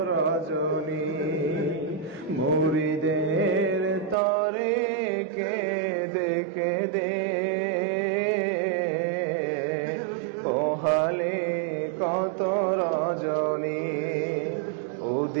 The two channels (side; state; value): left; drops out; at 4.2 s